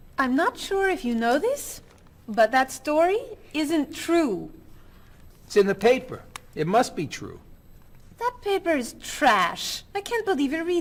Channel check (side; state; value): both; identical; correlation 1.00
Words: I'm not sure if you know this, but that story isn't true. It's in the paper. It must be true. That paper is trash. I can't believe you're